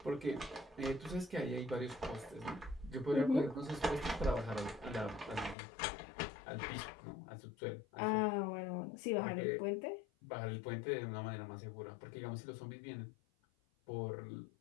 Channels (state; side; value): drops out; right; at 5.6 s